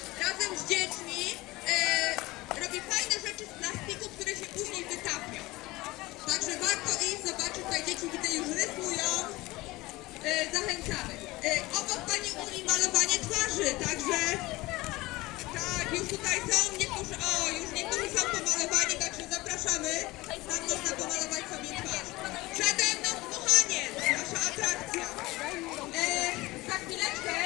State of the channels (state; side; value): quieter; right; 20.3 dB